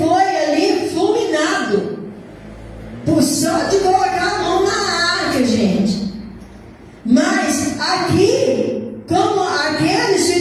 ali fulminado, por só de colocar a mão na arca, gente. Mas aqui, como aqueles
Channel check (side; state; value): both; identical; correlation 1.00